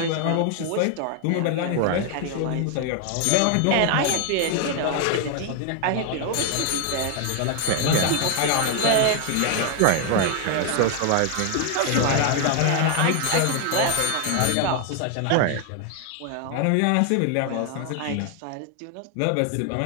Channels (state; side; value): different; both; correlation 0.00